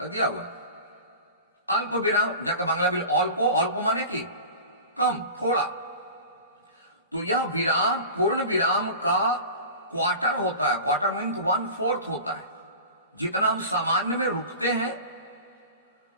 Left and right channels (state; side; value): inverted; both; correlation -0.35